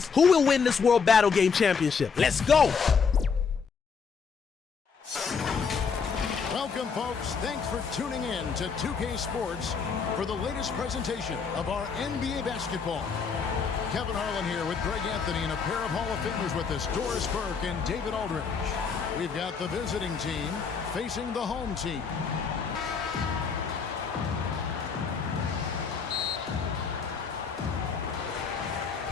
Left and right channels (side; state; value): right; quieter; 5.8 dB